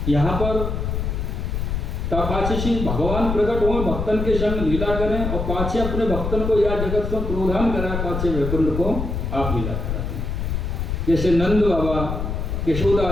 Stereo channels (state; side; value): noise; left; rumble, 3 dB below the sound